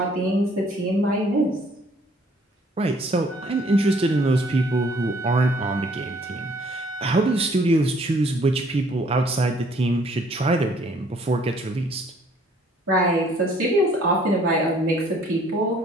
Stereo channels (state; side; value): normal; both; correlation 0.60